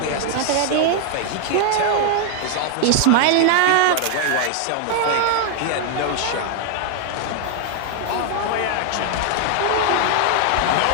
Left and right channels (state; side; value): different; both; correlation 0.00